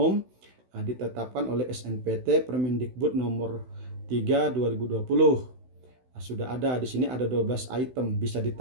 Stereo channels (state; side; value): late; left; 16 ms